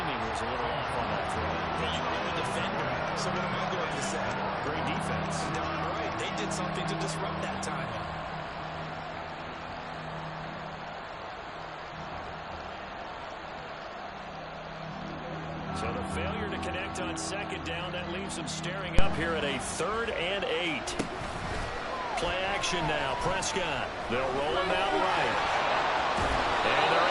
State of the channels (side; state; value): both; identical; correlation 1.00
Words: was a little off on that throw. You are the defender, so what am I going to say? Great defense. Darn right. They did something to disrupt that time. So the failure to connect on 2nd down, that leaves them staring up here at a 3rd and 8. Play action now. Prescott. They'll roll him out right. And they're